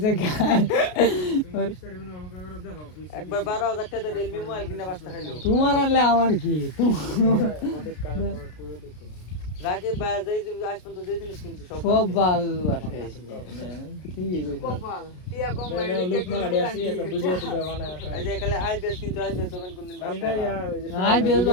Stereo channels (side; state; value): right; late; 33 ms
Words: খায় একবার 12000 টাকা রিয়েলমি মোবাইল কিনা বাস্তা খাইলো তোমার আনলে আমার কি রাকে বাজাই আজ পর্যন্ত যে জিনিস কিনছি সব বাল আছে ঠিকই কইছো কপাল টিয়া কম লাগে লোক মালাডি আসি একটা ভিডিও তে বানায় এই যে এখানে আইপিএস 300 কোন দিন কালকে यार আইপিএস